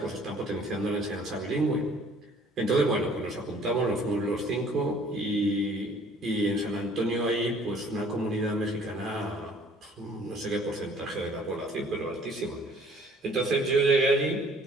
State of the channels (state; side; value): normal; both; correlation 0.56